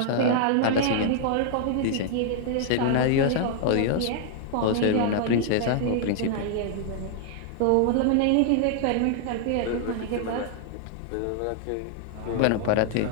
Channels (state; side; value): different; both; correlation -0.01